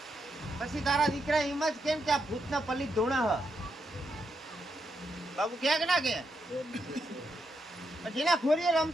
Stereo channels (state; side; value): normal; both; correlation 0.82